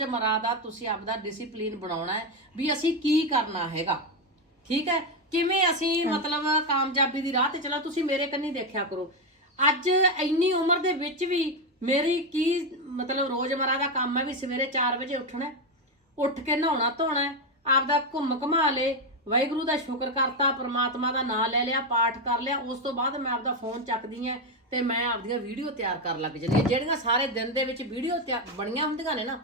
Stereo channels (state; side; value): normal; both; correlation 0.08